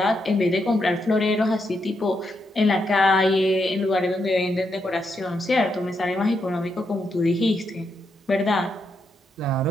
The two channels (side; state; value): both; normal; correlation 0.81